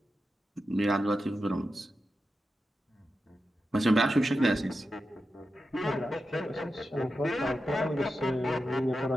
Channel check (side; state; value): both; normal; correlation 0.90